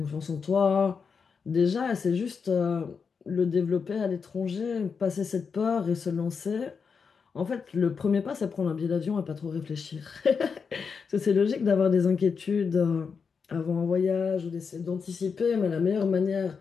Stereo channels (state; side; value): quieter; right; 5.7 dB